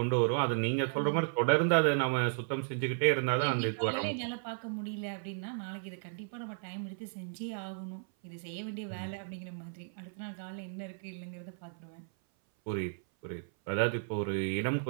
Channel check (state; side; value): silent; left; 55 dB below the other